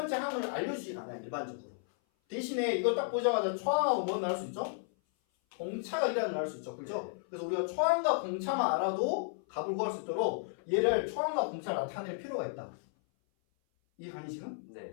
항을 알려주지 않아요. 일반적으로. 대신에 이거 딱 보자마자 초항하고 뭐 나올 수 있죠? 공차가 1이라는 걸 알 수 있죠. 그죠? 네. 그래서 우리가 초항과 공차만 알아도 값을 구할 수 있도록 얘를 초항과 공차를 나타낼 필요가 있다. 이해가니 지금?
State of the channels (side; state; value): right; silent; 55 dB below the other